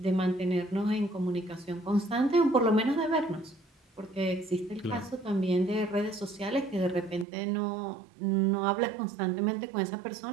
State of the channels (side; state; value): left; drops out; at 7.2 s